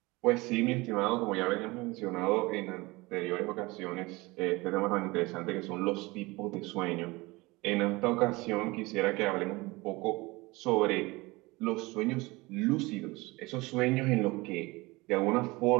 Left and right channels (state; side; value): quieter; left; 22.8 dB